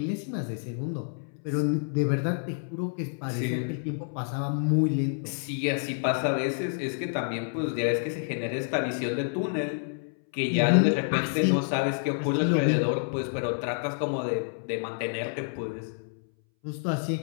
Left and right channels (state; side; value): silent; right; 59 dB below the other